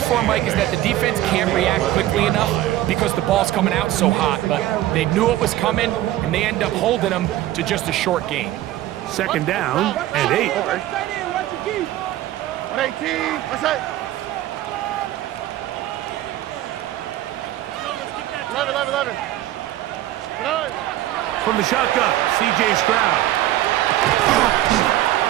Mike, is that the defense can't react quickly enough because the ball's coming out so hot. But they knew it was coming, and they end up holding them to just a short gain. Second down and 8. 118. What's that? 11. From the shotgun, C.J. Stroud.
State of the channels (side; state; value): left; quieter; 14.4 dB